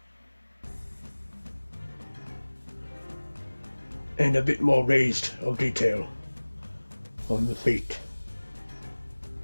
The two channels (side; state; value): both; inverted; correlation -1.00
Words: And a bit more raised of detail on the feet.